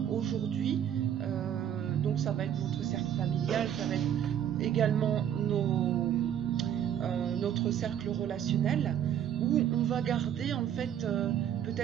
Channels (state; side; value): quieter; left; 9.8 dB